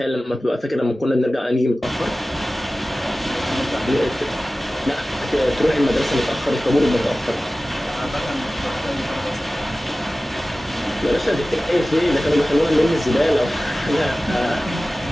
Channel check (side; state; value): both; normal; correlation 0.96